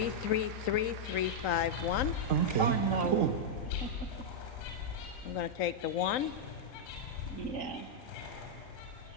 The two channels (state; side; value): late; right; 3.9 ms